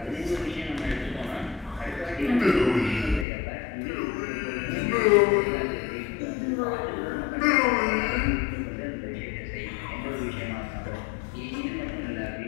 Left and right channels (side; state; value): right; drops out; at 3.2 s